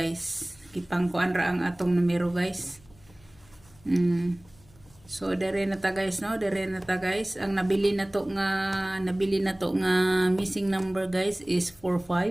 Kipangkuan ra ang atong numero guys. So dire na ta guys no, dire na ta guys. Ang nabili na to nga missing number guys is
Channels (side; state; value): left; noise; hum, 27 dB below the sound